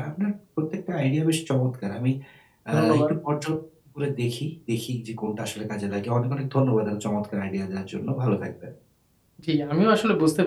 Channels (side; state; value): both; identical; correlation 1.00